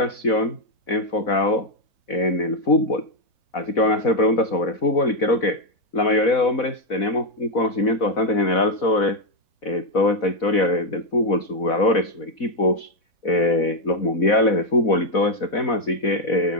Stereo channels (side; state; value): right; late; 4.1 ms